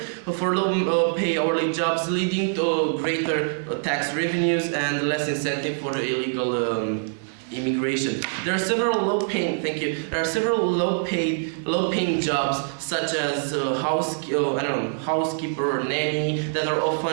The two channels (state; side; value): silent; left; 62 dB below the other